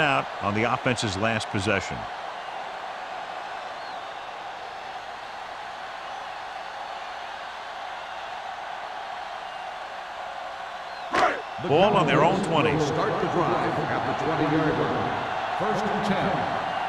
on the offense's last possession. Ball on their own 20. Start the drive at the 20-yard line. 1st and 10.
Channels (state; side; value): identical; both; correlation 1.00